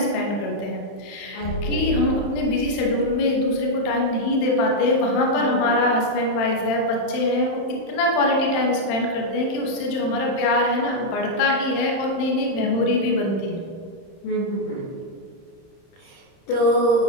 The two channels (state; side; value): late; right; 31 ms